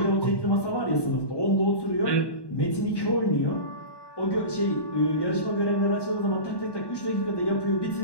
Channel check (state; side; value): late; right; 1.1 ms